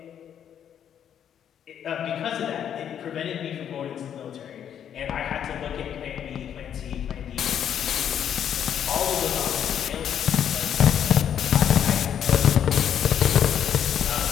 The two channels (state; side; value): quieter; right; 9.2 dB